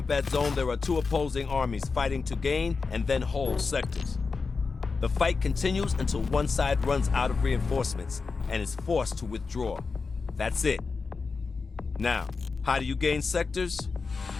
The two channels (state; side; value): quieter; right; 4.6 dB